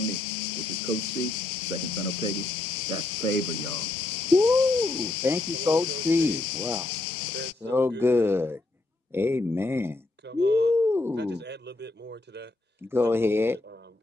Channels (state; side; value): quieter; right; 3.0 dB